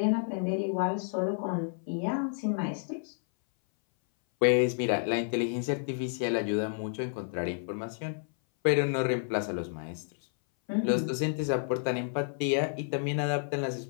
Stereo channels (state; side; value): silent; right; 58 dB below the other